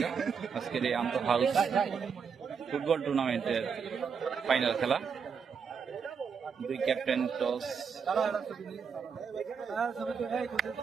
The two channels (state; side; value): quieter; left; 6.3 dB